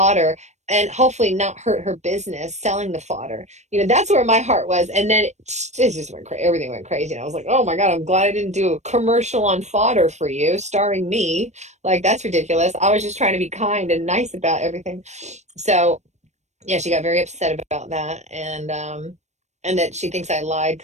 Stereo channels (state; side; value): late; left; 0.33 ms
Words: and hopefully not hurt her business selling the fodder. You know, that's where my heart was. And then it just went crazy. Everything went crazy. And I was like, oh my God, I'm glad I didn't do a commercial on fodder for you, starring me. Like, that's ridiculous. I was just trying to be kind and nice about everything. So, yeah, she got very upset about that. And and that she thinks I lied